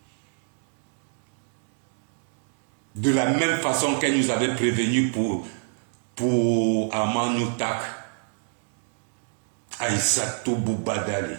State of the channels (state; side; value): silent; left; 60 dB below the other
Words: de la même façon qu'elle nous avait prévenu pour Amanoutak, Aïssatou Boubadali.